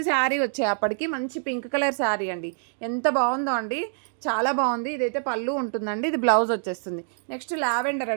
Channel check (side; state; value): left; silent; digital silence